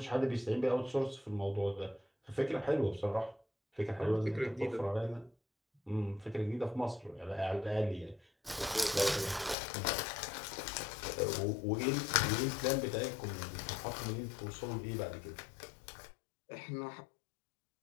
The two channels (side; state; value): right; drops out; at 9.6 s